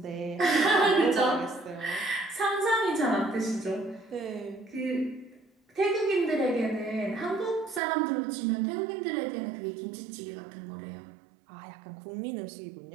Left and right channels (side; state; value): left; drops out; at 7.8 s